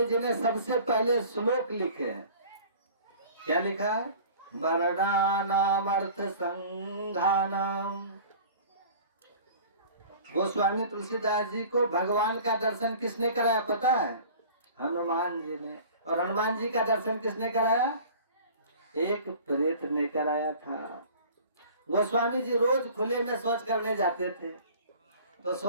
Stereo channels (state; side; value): inverted; both; correlation -0.44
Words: जी ने सबसे पहले श्लोक लिखे हैं। क्या लिखा है? वर्णानाम अर्थ संघानाम। गोस्वामी तुलसीदास जी को भगवान का दर्शन किसने कराया पता है? हनुमान जी ने। और हनुमान जी का दर्शन किसने कराया? एक प्रेत ने कराया था। गोस्वामी जी रोज खुले में शौच करने जाते थे, तो